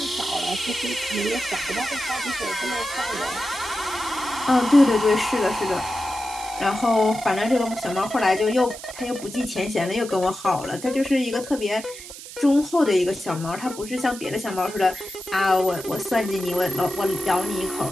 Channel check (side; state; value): right; noise; hiss, 14 dB below the sound